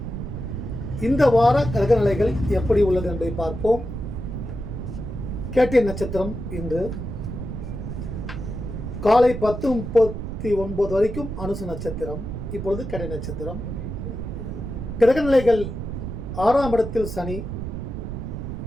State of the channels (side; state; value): right; noise; rumble, 6 dB below the sound